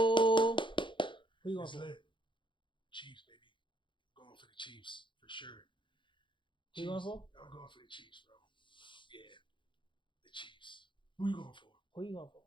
you going It's for? lit. Chiefs, baby. Going for the Chiefs for sure. Who you going for? I'm going for the Chiefs, bro. Yeah, the Chiefs. Who you going for? Who you going for?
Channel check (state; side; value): late; right; 0.23 ms